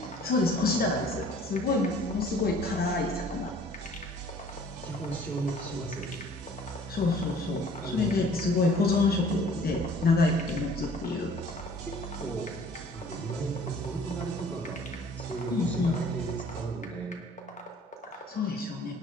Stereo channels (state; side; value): normal; both; correlation 0.53